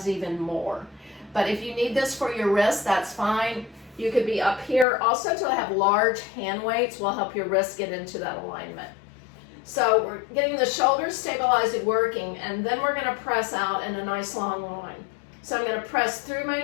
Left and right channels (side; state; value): right; drops out; at 4.9 s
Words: even more. But if you need this for your wrist, that's fine. You could be up here. Also, to have large hand weights will help your wrist get into that alignment. So we're getting the shoulders stabilized and working, and then we're gonna press out in a nice long line. So I'm gonna press through my